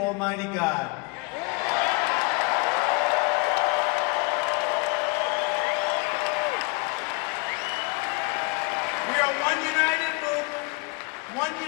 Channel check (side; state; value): right; quieter; 29.8 dB